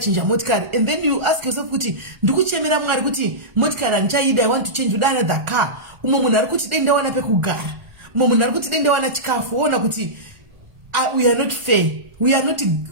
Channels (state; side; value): late; left; 1.4 ms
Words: motikari and then you ask yourself kuti ndikuchemera Mwari kuti motikari handichaida I want to change another car. Umwe munhu ari kuti dai ndawana pekugara umwe munhu ari kuti dai ndawana chikafu woona kuti we are not fair we